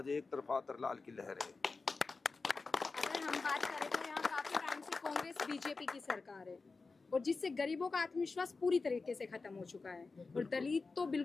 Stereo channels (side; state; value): right; quieter; 4.1 dB